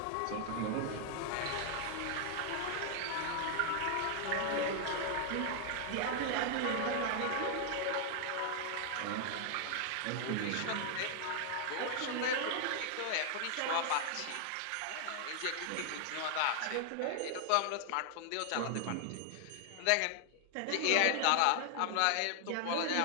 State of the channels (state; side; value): different; both; correlation 0.00